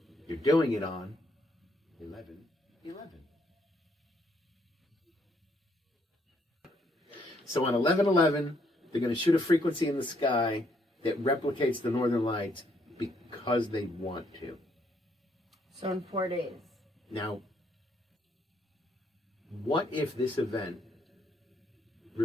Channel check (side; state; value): both; normal; correlation 0.71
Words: You're doing it on 11/11. So on 11/11, they're going to shoot a frequency in the sky that replicates the northern lights because they want to. So in 4 days. Now, what if this event,